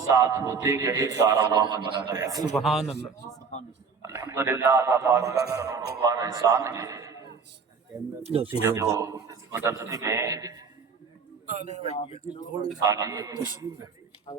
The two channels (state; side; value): quieter; left; 5.4 dB